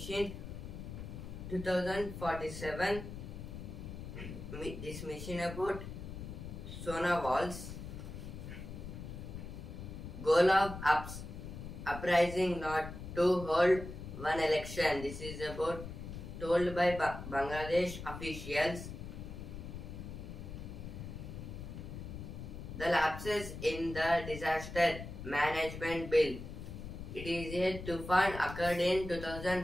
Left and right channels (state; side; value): noise; left; rumble, 9 dB below the sound